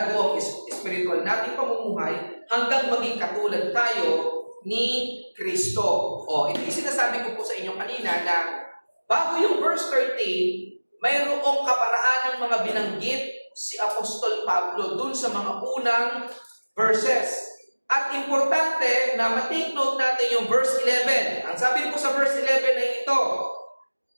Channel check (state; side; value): inverted; both; correlation -1.00